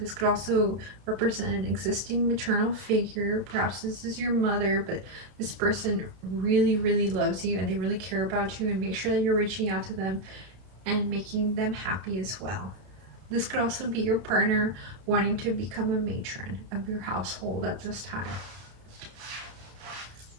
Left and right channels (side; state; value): left; late; 31 ms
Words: This could also represent an existing maternal figure. Perhaps this is your mother, but this person really, really loves you and they really care about you, and make sure that you're reaching out to them and making them happy as well. This could also be your partner wanting to become a matron of your household at this time.